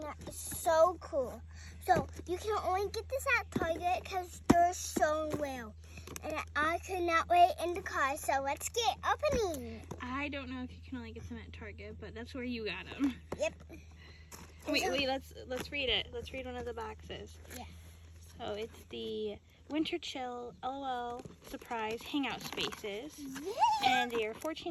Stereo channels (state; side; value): identical; both; correlation 1.00